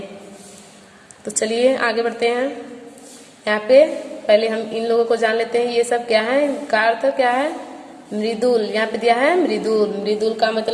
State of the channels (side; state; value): both; identical; correlation 1.00